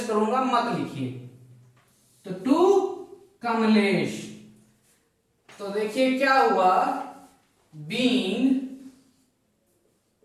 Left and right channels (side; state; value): both; identical; correlation 1.00